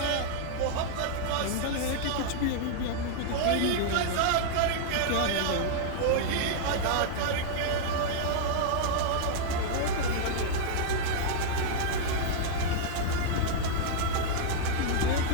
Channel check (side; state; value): both; different; correlation -0.01